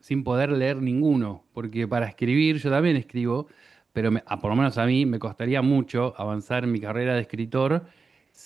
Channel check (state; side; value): quieter; left; 4.6 dB